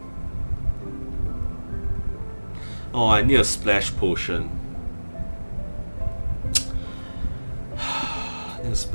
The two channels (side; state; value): both; inverted; correlation -1.00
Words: Oh, I need a splash potion. I need a